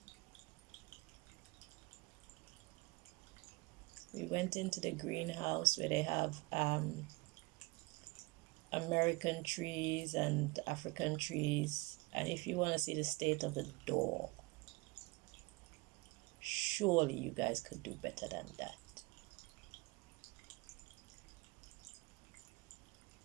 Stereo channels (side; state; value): left; quieter; 24.7 dB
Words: We went into the greenhouse where they have American trees and African trees, and if you want to see the state of the door, surely you guys could do better than that.